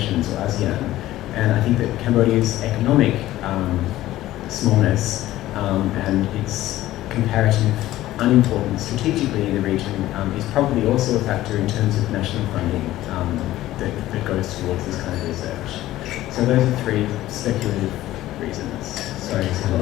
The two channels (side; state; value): right; quieter; 15.2 dB